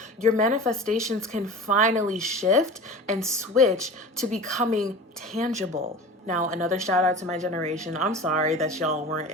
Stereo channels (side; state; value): both; normal; correlation 0.35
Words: your manifestations can finally shift and switch to becoming tangible. Now, another shout out to my generation. I'm sorry that y'all weren't,